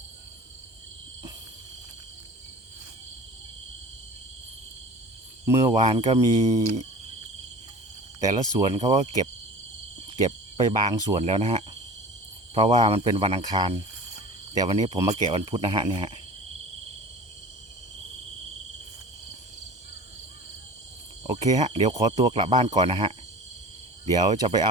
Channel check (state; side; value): late; left; 1.2 ms